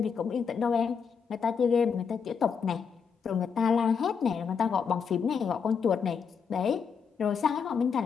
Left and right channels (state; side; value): quieter; right; 6.4 dB